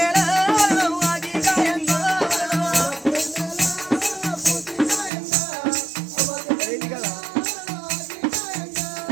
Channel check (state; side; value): drops out; left; at 5.1 s